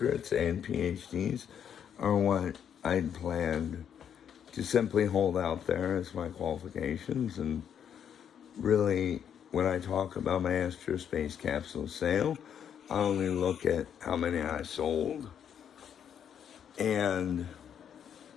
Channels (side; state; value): right; quieter; 8.6 dB